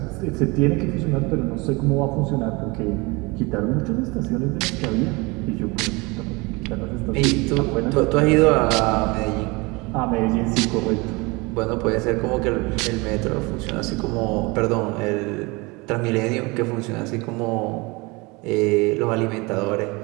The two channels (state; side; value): quieter; left; 25.8 dB